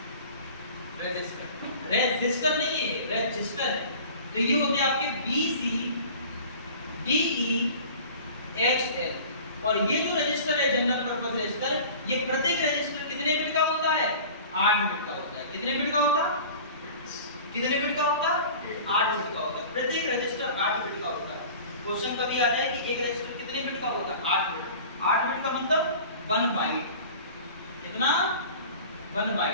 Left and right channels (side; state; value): both; inverted; correlation -0.41